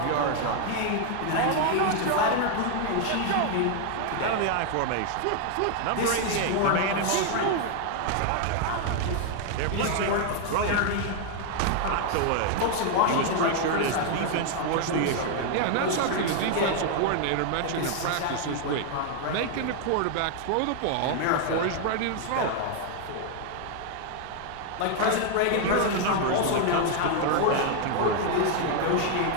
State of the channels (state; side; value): different; both; correlation 0.00